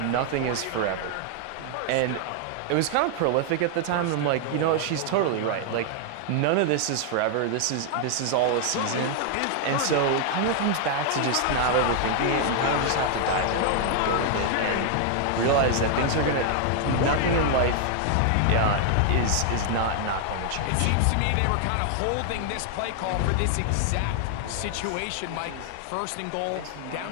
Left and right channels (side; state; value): both; different; correlation 0.00